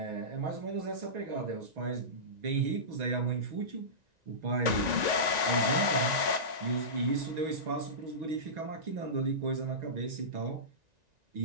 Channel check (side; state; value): left; late; 1.9 ms